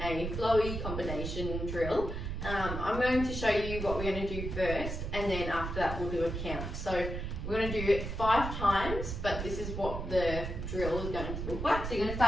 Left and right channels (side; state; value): right; noise; rumble, 5 dB below the sound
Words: a flowy combination drill. I'm going to show you what we're going to do first and then after that we'll do a count. So we're going to do it 5 times, but this is what the drill is going to look like. So you're going to